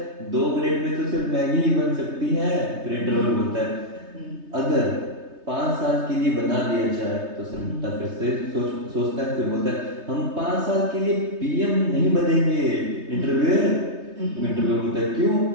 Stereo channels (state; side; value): late; left; 3.2 ms